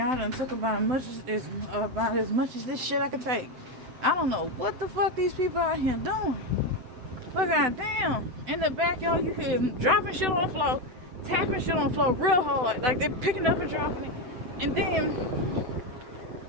done took about as much as this shit I could take. I don't know what the fuck these people out here doing. Look at damn. In the backyard, you hear them dropping shit on the floor, tapping shit on the floor real hard. Like they're picking up and dropping it. And then,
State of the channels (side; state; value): left; late; 7.9 ms